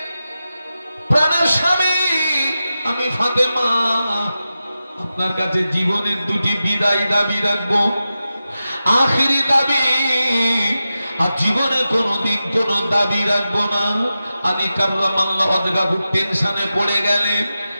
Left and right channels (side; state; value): both; inverted; correlation -0.92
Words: প্রাণের স্বামী, আমি ফাতেমা আপনার কাছে জীবনের দুটি বিদায় দাবি রাখবো, আখিরি দাবি, আর জীবনে কোনোদিন কোনো দাবি রাখবো না। আলী কাররামাল্লাহু ওয়াজহাহু টেনশনে পড়ে গেলেন।